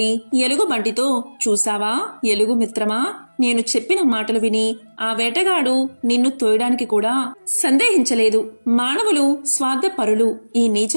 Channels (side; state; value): both; inverted; correlation -1.00